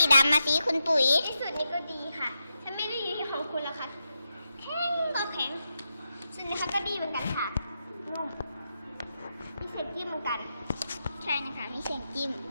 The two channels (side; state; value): both; inverted; correlation -0.87